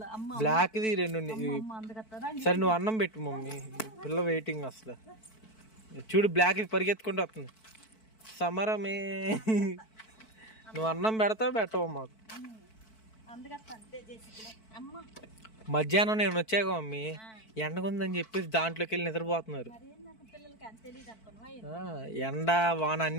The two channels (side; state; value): right; late; 4.5 ms